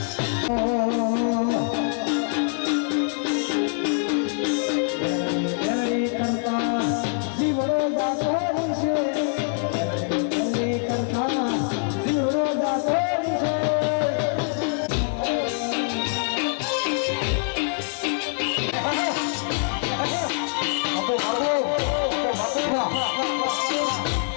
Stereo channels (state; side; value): silent; right; 62 dB below the other